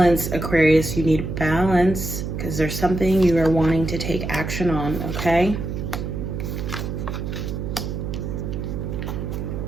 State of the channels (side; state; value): right; noise; hum, 4 dB below the sound